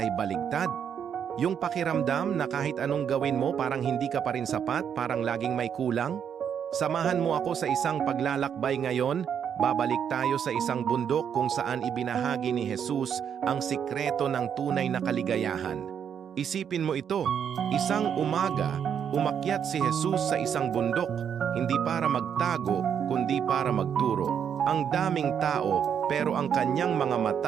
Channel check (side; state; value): left; quieter; 8.1 dB